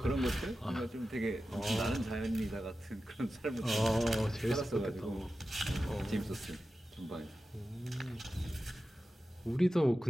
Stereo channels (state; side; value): normal; both; correlation 0.93